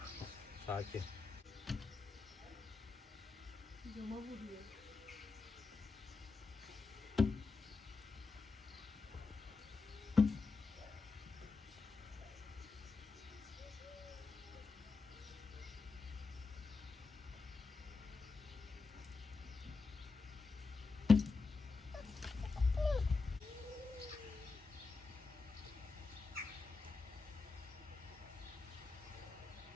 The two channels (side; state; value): right; quieter; 4.4 dB